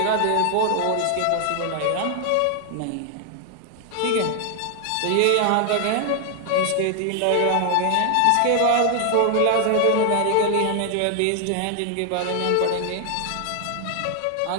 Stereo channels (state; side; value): different; both; correlation 0.00